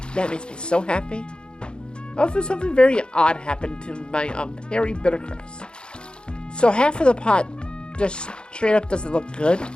that makes me so happy. Also, something very odd happened to my Harry Bittercress. So half of the pot just straight up doesn't look good.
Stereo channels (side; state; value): right; late; 0.051 ms